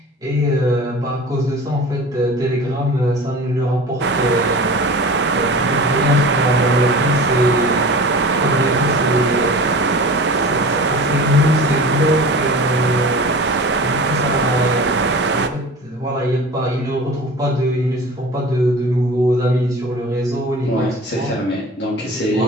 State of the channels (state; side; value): normal; both; correlation 0.37